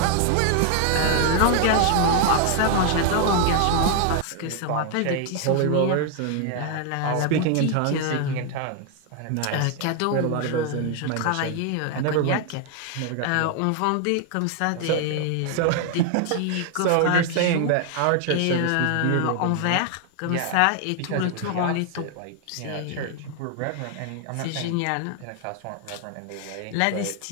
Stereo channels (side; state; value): both; different; correlation 0.00